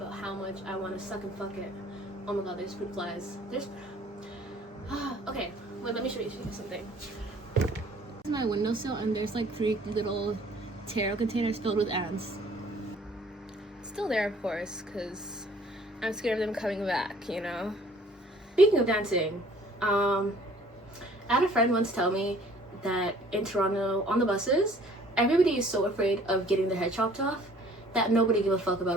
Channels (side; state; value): both; normal; correlation 0.55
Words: how much I want to suck and fuck it. Oh my god, there's fruit flies. Okay, wait, let me show you something. This is my windowsill, and there's like 3 little taro containers filled with ants. Still there, of course, because I'm scared of them coming back, you know? Speaking of dancing, I had a friend once tell me that in Toronto, on the buses, everybody is so afraid of getting their head chopped off that nobody give a fuck about